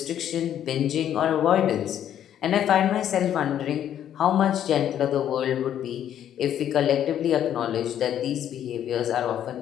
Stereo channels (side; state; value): right; quieter; 10.4 dB